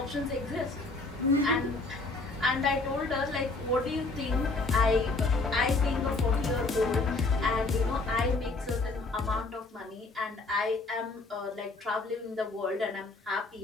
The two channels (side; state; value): right; quieter; 3.5 dB